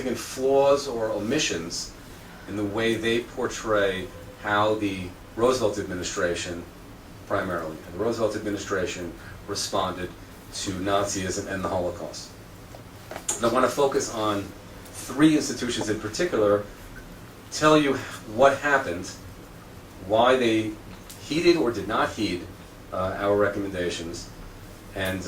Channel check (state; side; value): identical; both; correlation 1.00